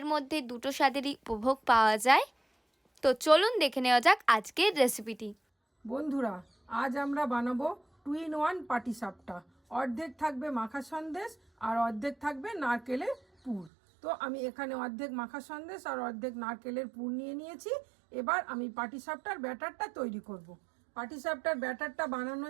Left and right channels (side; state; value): left; drops out; at 13.7 s